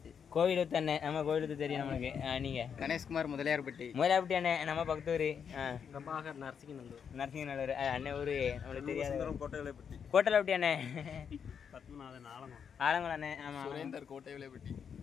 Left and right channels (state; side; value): quieter; right; 7.2 dB